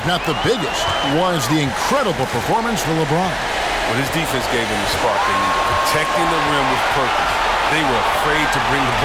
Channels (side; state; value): both; identical; correlation 1.00